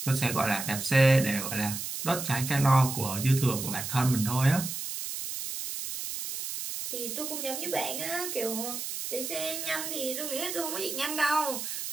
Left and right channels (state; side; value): noise; right; hiss, 5 dB below the sound